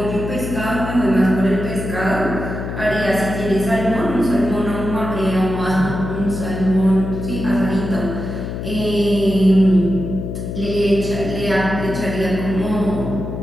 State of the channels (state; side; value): noise; left; hum, 6 dB below the sound